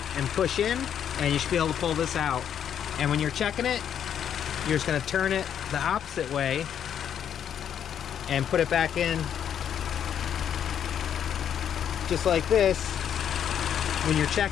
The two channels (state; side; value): quieter; right; 9.0 dB